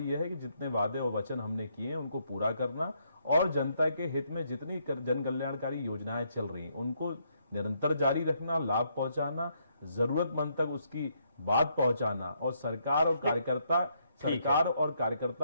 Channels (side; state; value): both; inverted; correlation -0.74